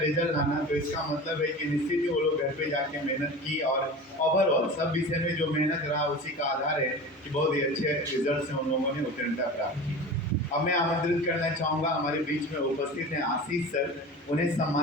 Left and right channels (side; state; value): both; normal; correlation 0.34